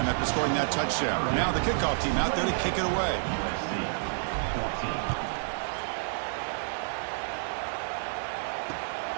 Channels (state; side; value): silent; left; digital silence